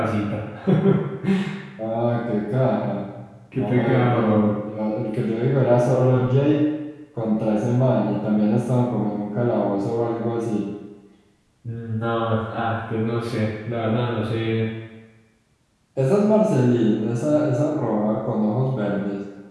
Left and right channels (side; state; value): both; identical; correlation 1.00